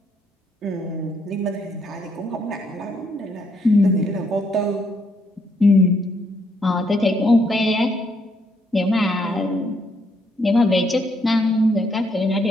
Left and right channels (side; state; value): both; normal; correlation 0.72